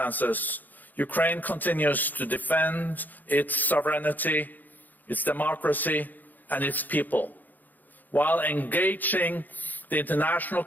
Ukraine continues to defend its sovereignty, its democracy, and its people, while engaging the international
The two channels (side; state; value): right; late; 0.085 ms